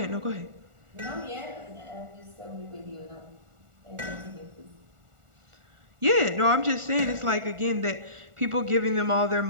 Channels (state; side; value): late; left; 1.4 ms